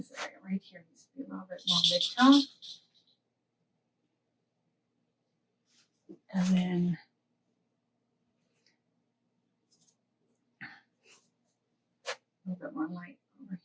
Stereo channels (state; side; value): identical; both; correlation 1.00